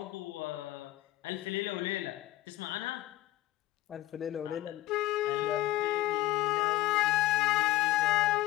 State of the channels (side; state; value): right; quieter; 15.9 dB